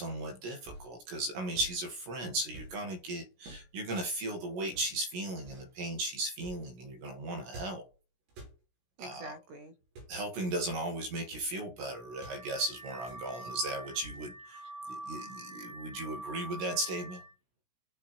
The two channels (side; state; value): left; late; 16 ms